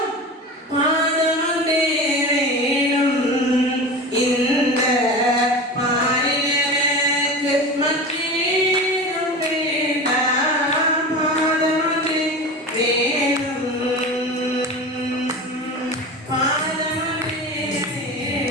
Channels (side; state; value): both; normal; correlation 0.30